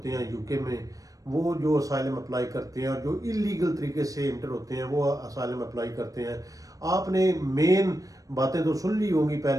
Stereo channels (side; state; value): left; late; 0.17 ms